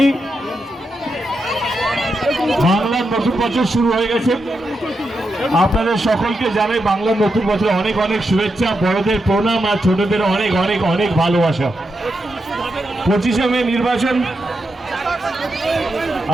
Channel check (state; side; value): normal; both; correlation 0.85